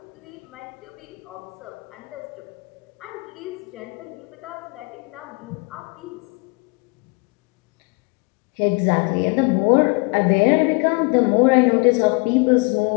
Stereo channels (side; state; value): right; quieter; 30.3 dB